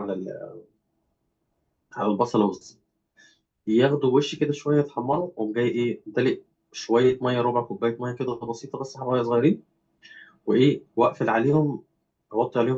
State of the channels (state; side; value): identical; both; correlation 1.00